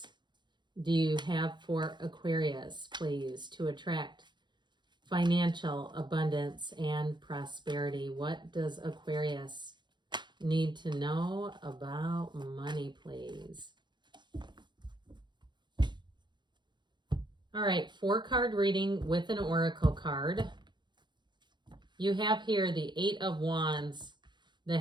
do you have for Aquarius, please, to attract financial abundance and prosperity? What does Aquarius need to know about money, please? All right, 4-card reading with an oracle card. You have here the 8 of Wands, the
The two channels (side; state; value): left; late; 0.22 ms